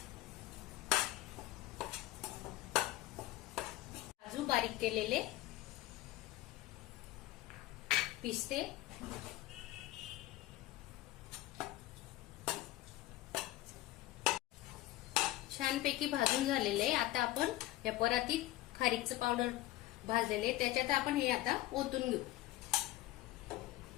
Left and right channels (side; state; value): right; quieter; 16.4 dB